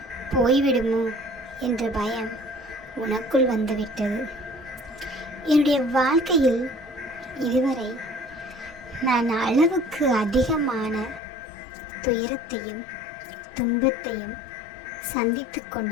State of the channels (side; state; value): right; drops out; at 11.2 s